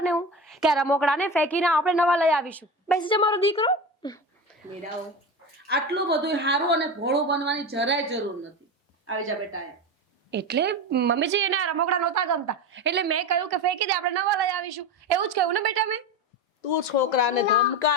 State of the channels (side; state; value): both; normal; correlation 0.24